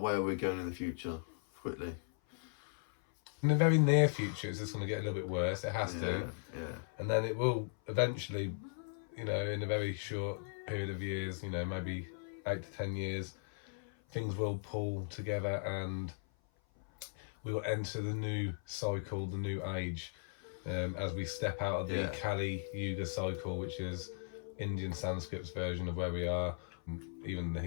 where we're going in the future, quickly? In the very near future, it's just going to get a little bit worse. It has to. Yeah. And then it will eventually, in a very short period of years, maybe 8 to 10 years, things will pull together and we will enter the new cycle, the new age. as we step out of the Kali Yuga cycle, which is Indian Sanskrit's version of where we are, even the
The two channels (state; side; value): silent; right; 53 dB below the other